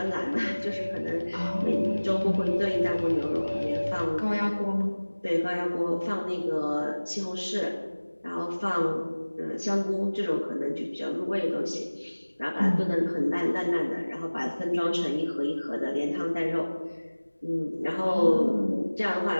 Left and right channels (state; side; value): inverted; both; correlation -1.00